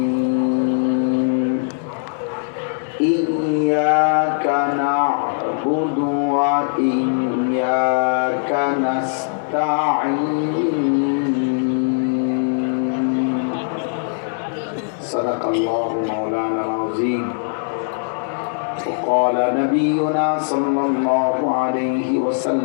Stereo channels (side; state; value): right; silent; digital silence